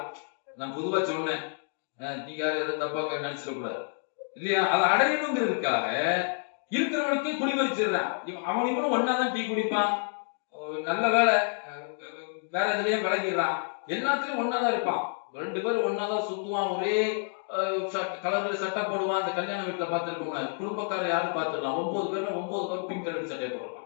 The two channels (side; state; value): right; silent; 59 dB below the other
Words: நான் பொதுவா சொன்னேன், நீங்க யாரும் எதை தப்பா நினைச்சிடக்கூடாது இல்லையா? அதை அடையணுங்கிறதுக்காக இருக்கிறவனுக்கே குடிமறிச்சிடுறான். அவன் இவனும் ஒன்னாதான் டீ குடிப்பான், நல்ல வேலை வேற எதுலயும் விளங்கிடுறான், எல்லாத்துலயும் ஒன்னாதான் இருப்பான். 2 பேரும் ஒன்னாதான் சுத்துவான், ஒரே கலர்ல சட்டை போடுவான். அந்த கல்யாண வீட்டுல பாத்துருக்கோங்க, குடும்பக்காரர் யாரும் பாத்துடலாம், 9 பேர்ல 9 பேர் பிங்க் கலர் சட்டையை